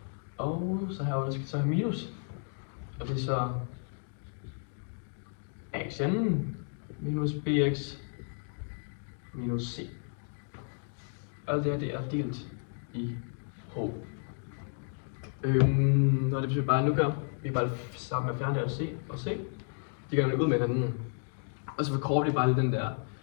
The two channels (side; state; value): right; silent; 56 dB below the other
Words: Og så her skal vi så have minus. Og det er så axn minus bx minus c. Alt det her det er delt i h. Og det betyder bare, at nu gør vi bare sammen med at fjerne det c og c. De gør det ud med hinanden. Og så forkorter vi bare den der